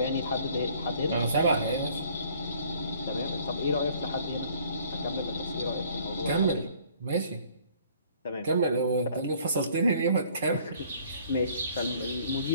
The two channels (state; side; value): inverted; both; correlation -0.57